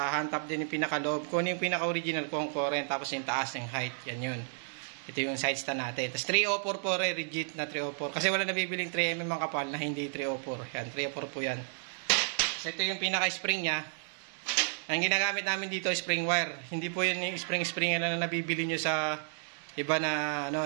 din yung pinaka-loob. Kung yung pinaka-original kung current. Tapos yung taas ng height. Yan yun. Ito yung side stand natin. Tapos 304 po rin, rigid na 304. Kasi wala nabibiling 3mm ang kapal na hindi 304. Yan, 304 po yan. So ito yung pinaka-spring niya. Ang ginagamit namin dito spring wire. Hindi po yun yung spring na nabibili nyo sa iba na,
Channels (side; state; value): left; silent; digital silence